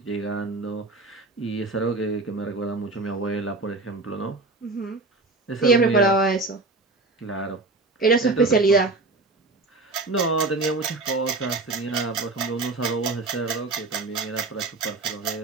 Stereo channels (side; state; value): left; quieter; 3.3 dB